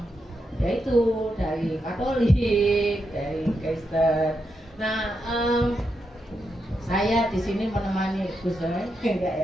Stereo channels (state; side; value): normal; both; correlation 0.84